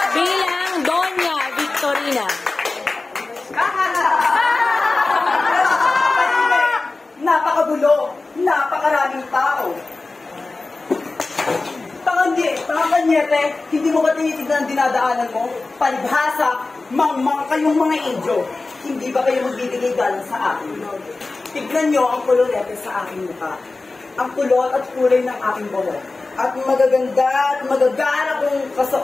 bilang Doña Victorina. Napakagulo, napakaraming tao. Panganyete, hindi mo ba tinitignan ang dinadaanan mo? Palibhasa, mangmang kayong mga Indio. Hindi ba kayo magbibigay galang sa akin? Tignan nyo ang kulorete sa aking mukha. Ang kulot at kulay ng aking buhok. At magaganda at magagana kong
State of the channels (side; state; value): right; quieter; 3.5 dB